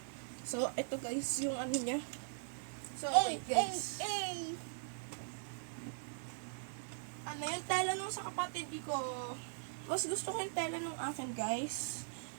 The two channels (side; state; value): left; silent; digital silence